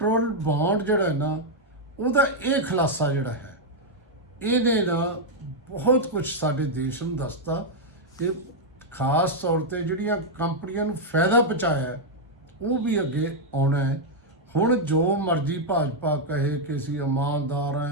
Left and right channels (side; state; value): both; normal; correlation -0.02